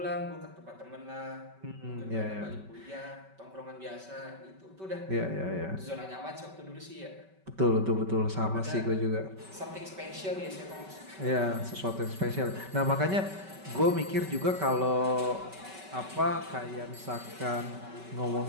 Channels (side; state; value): left; late; 5.2 ms